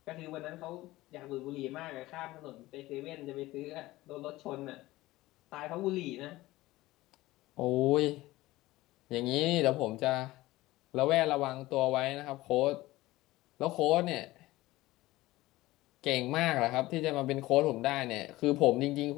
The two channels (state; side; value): quieter; right; 18.1 dB